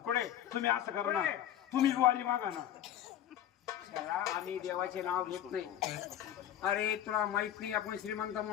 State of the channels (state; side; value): quieter; right; 11.0 dB